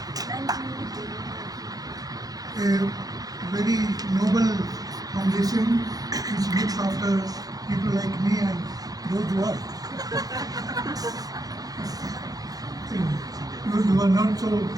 a very noble foundation which looks after people like me and those who are those who are not so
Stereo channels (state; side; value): late; left; 0.18 ms